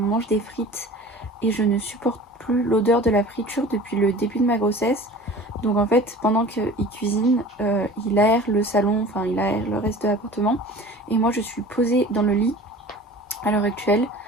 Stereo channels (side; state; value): both; normal; correlation 0.42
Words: des frites et je ne supporte plus l'odeur de la friture depuis le début de ma grossesse. Donc en fait, pendant qu'il cuisine, il aère le salon, enfin il aère le reste de l'appartement. Et moi je suis posée dans le lit à l'heure actuelle.